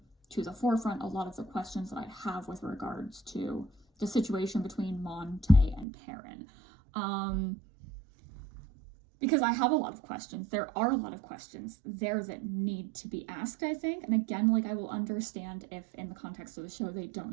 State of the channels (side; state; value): left; drops out; at 5.9 s